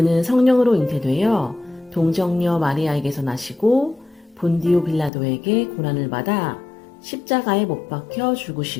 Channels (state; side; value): drops out; right; at 5.1 s